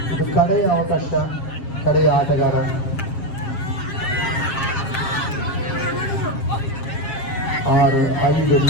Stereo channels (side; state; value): right; late; 7.4 ms